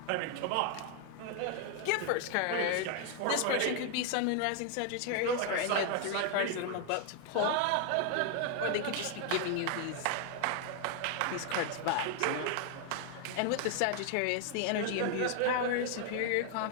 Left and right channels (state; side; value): different; both; correlation 0.00